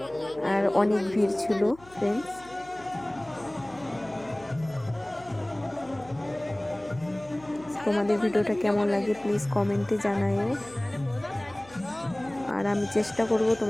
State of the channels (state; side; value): noise; left; hum, 24 dB below the sound